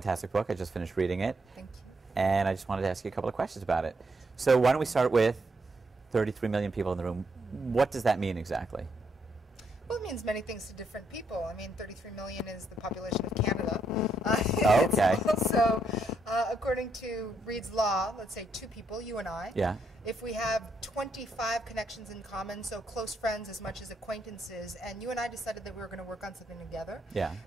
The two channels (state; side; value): normal; both; correlation 0.77